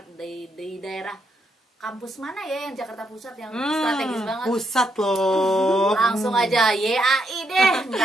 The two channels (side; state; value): both; normal; correlation 0.78